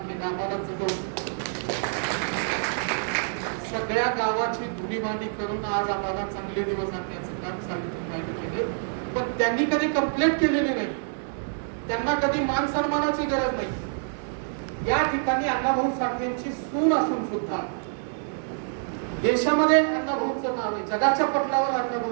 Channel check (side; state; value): left; silent; digital silence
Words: केलं. आम्हाला सगळ्या गावाची धुणीभांडी करून आज आम्हाला चांगले दिवस आणण्याचं काम सावित्रीबाईंनी केले. पण त्यांनी कधी कंप्लेंट केलेली नाही, त्यांना कधी मान सन्मानाची गरज नाही. या ठिकाणी अण्णाभाऊ साठेंची सून असून सुद्धा देशामध्ये अण्णाभाऊचं नाव आहे, जगाच्या पटलावर